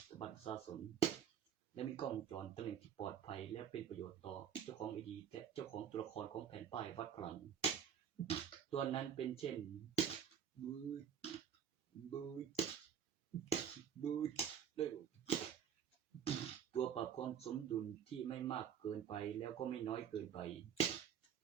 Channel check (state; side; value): quieter; left; 8.7 dB